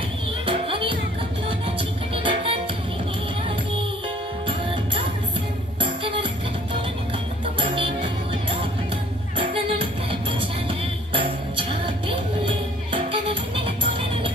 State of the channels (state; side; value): normal; both; correlation 0.57